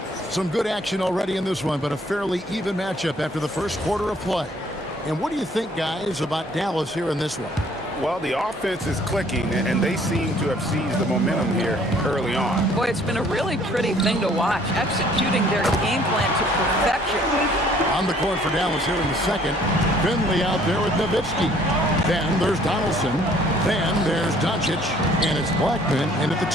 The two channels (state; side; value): normal; both; correlation 0.59